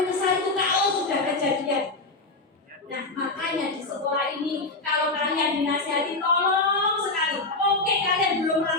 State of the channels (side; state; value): right; quieter; 3.3 dB